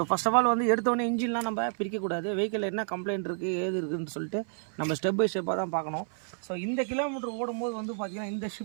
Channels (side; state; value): left; silent; 58 dB below the other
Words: ஃபஸ்ட் ஆஃப் ஆல் வந்து எடுத்தோடனே இன்ஜின்லாம் நம்ம பிரிக்கக்கூடாது. வெஹிக்கிள் என்ன கம்ப்ளைண்ட் இருக்குது ஏது இருக்குதுன்னு சொல்லிட்டு நம்ம ஸ்டெப் பை ஸ்டெப்பாக தான் பார்க்கணும். ஸோ இந்த கிலோமீட்டர் ஓடும்போது வந்து பார்த்திங்கன்னா இந்த